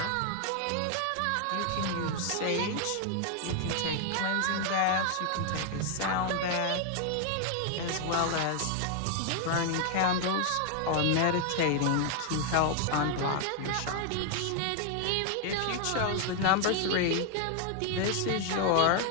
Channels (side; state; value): both; different; correlation 0.00